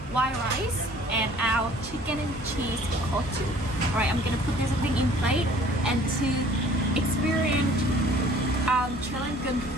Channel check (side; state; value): both; normal; correlation 0.53